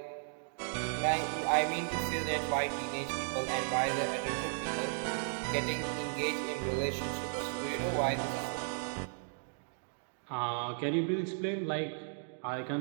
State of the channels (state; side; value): silent; left; digital silence